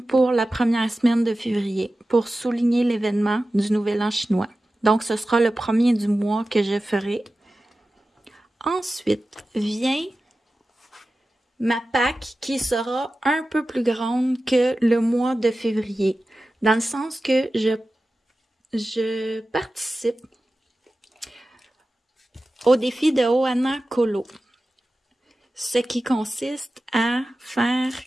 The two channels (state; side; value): normal; both; correlation 0.95